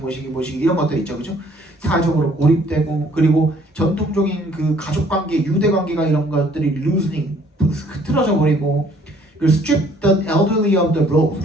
이런 것들 있죠, 그죠? 사회적으로 고립되고 그리고 전통적인 그 가족 관계, 유대 관계가 이런 것들이 loosening, 흐트러져 버리고 그리고 strip the elderly of the roles.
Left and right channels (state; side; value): normal; both; correlation 0.60